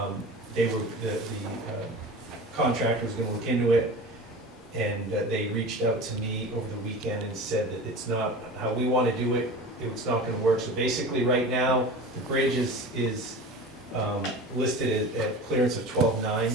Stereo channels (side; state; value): both; normal; correlation 0.34